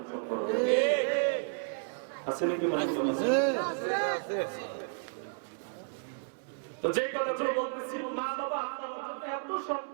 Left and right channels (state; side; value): silent; left; 56 dB below the other